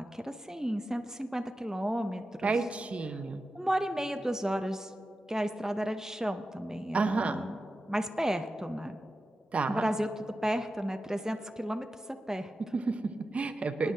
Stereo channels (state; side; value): normal; both; correlation 0.92